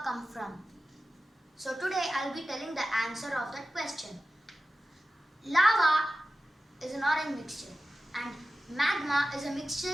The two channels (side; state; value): both; normal; correlation 0.95